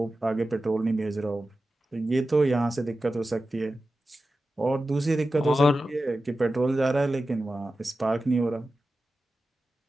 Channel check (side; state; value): both; normal; correlation 0.93